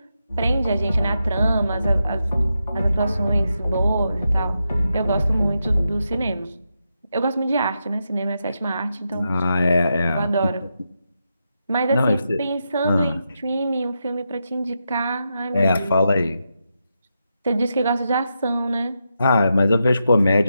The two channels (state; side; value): inverted; both; correlation -0.86